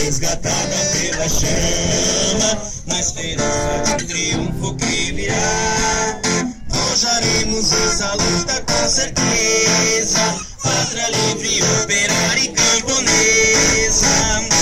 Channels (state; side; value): identical; both; correlation 1.00